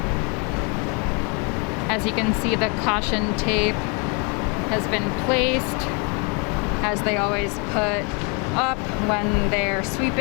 As you can see, the caution tape has been placed, as they always put up when they're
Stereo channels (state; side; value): quieter; right; 34.1 dB